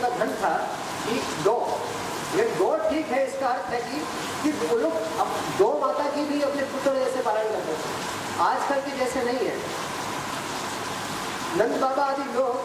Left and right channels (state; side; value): identical; both; correlation 1.00